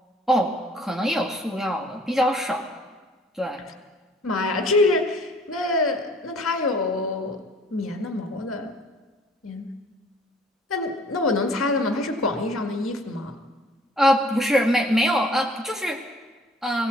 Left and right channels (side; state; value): both; normal; correlation 0.55